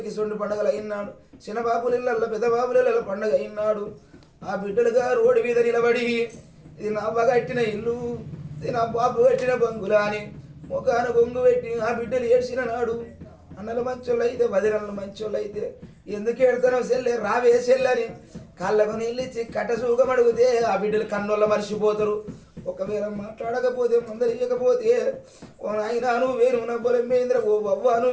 కిసొండి పండుగలు అయినాడు, చిన్న బాబుల ఇళ్ళల్లో పెద్ద బాబుల ఇళ్ళ పండుగ అయినాడు. ఆ బిడ్డలుగా రోడ్డు మీద నిలబడి ఇది నా అవ్వ కట్టిన ఇల్లు, ఇది నా బాబు కట్టిన బంగులా అని ముఖాన బొంగు పెట్టి ఆ బిడ్డలు ఏడ్చిన నాడు. అన్నలు మంచోళ్ళు అయితే వదినలు మంచోళ్ళు అయితే ఎందుకు ఏడతానో సెల్లే రావే సెల్లని కాళ్ళకు నీళ్ళిచ్చి కట్ట సూగం అడిగితే ఆ బిడ్డలు కన్నోళ్ళ మర్చిపోతారు. ఒకవేళ మాట్లాడకపోతే మందలియకపోతే ఓ నాయన నువ్వు వేరున బలమైందిరా, ఓ అవ్వ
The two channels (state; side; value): identical; both; correlation 1.00